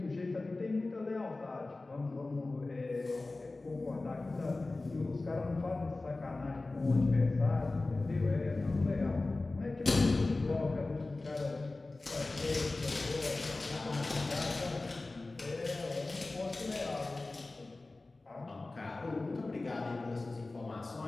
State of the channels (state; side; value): quieter; right; 3.2 dB